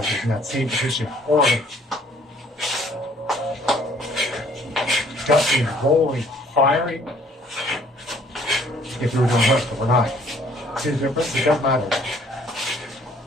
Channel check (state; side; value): normal; both; correlation 0.59